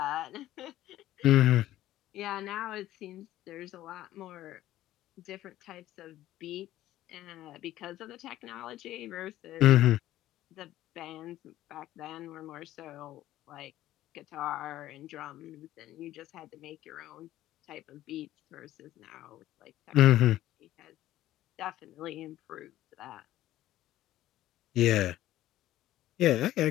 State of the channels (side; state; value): right; quieter; 14.3 dB